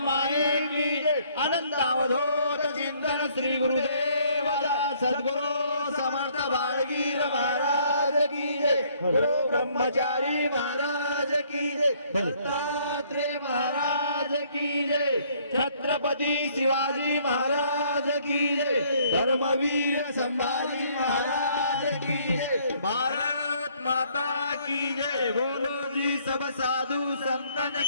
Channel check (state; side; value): inverted; both; correlation -0.63